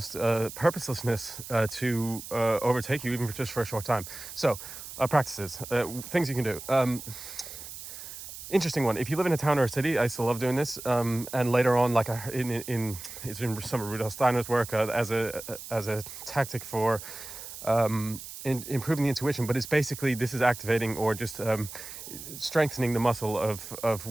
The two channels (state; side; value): noise; right; hiss, 12 dB below the sound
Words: purposelessness to overtake you, even just for a short time. So practices, things you can do. Interesting one. If you live in a town or a city, I still love doing this. And later on, like it's in some of Rudolf Steiner's work, as a tactic for improving the intuition. But it's basically, this is activating, or just strengthening the muscle of